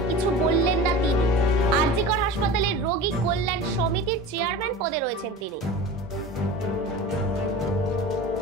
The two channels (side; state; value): both; normal; correlation 0.34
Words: কিছু বললেন না তিনি। আরজিকর হাসপাতালের রোগী কল্যাণ সমিতির চেয়ারম্যান পদে রয়েছেন তিনি।